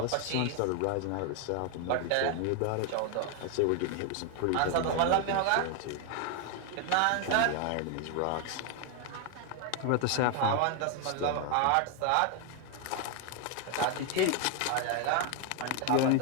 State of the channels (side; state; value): both; different; correlation 0.01